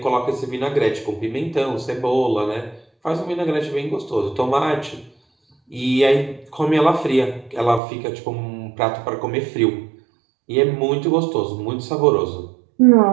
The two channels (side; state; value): left; drops out; at 7.8 s